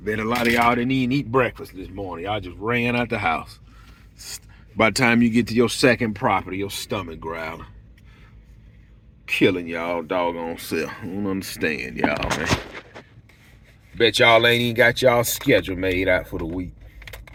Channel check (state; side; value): identical; both; correlation 1.00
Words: a lot of y'all didn't even eat breakfast this morning. Y'all just ran out the house. By the time you get to your second property, your stomach growling. Killing y'all doggone self. I don't understand y'all, man. Bet y'all ain't even got y'all schedule made out for the week.